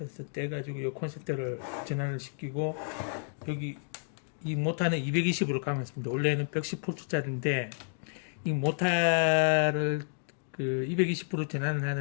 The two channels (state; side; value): silent; right; digital silence